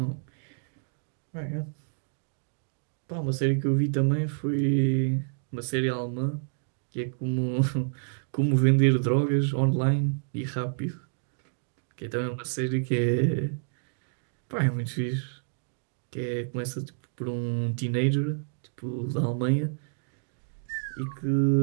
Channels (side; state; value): left; silent; digital silence